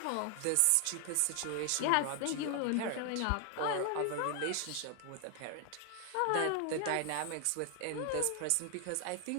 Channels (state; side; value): different; both; correlation 0.00